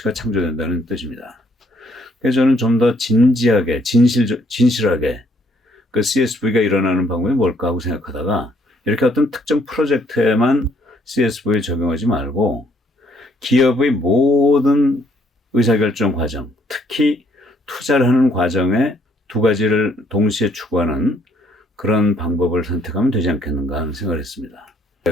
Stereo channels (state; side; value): normal; both; correlation 0.67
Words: 창조된다는 뜻입니다. 그래서 저는 좀 더 진지하게, 진실하게 그 CSV가 일어나는 방법이 뭘까 하고 생각하다가 이렇게 어떤 특정 프로젝트에만 CSV 적용하지 말고 기업의 모든 의사결정 과정, 특히 투자를 하는 과정에 두 가지를 동시에 추구하는 그런 방법을 선택하면 되지 않겠는가 하는 생각을 했습니다.